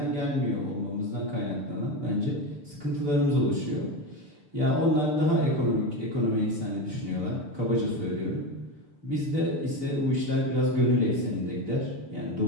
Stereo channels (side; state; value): left; late; 6.8 ms